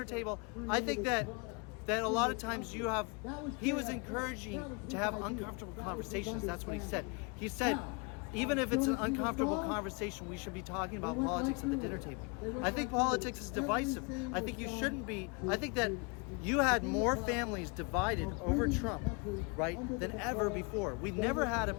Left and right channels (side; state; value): right; quieter; 31.7 dB